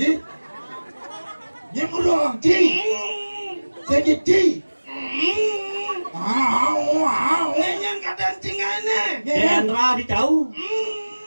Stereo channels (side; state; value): both; inverted; correlation -1.00